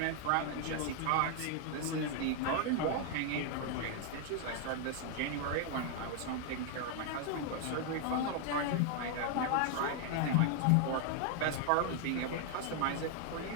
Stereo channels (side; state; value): both; different; correlation 0.00